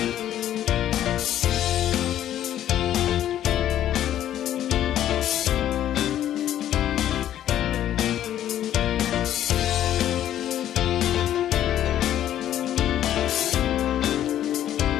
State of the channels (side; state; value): right; quieter; 11.6 dB